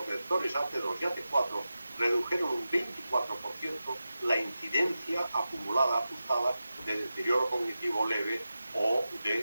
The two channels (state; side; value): inverted; both; correlation -0.92